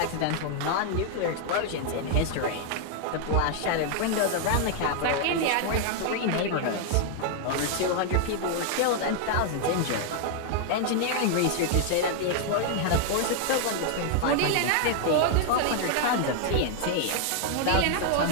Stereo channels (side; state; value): both; different; correlation 0.00